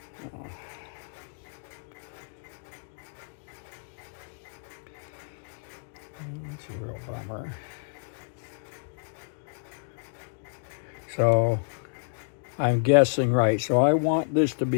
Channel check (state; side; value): silent; right; digital silence